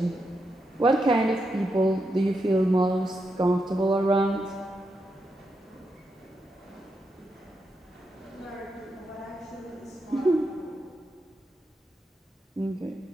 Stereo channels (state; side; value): normal; both; correlation 0.84